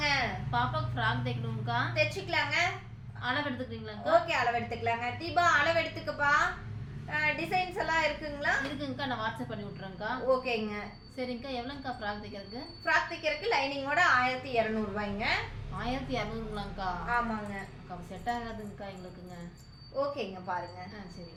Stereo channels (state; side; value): identical; both; correlation 1.00